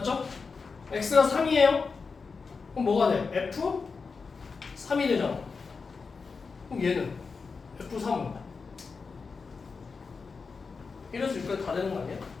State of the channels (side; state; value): right; quieter; 4.8 dB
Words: x가 3이에요. 그럼 뭐가 돼? f 3이 되잖아. 그럼 얘는 f3은 1에서 6까지 다 되는 거 아니야?